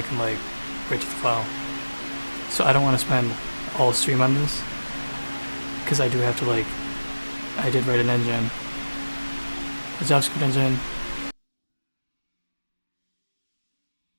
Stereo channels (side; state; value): both; inverted; correlation -1.00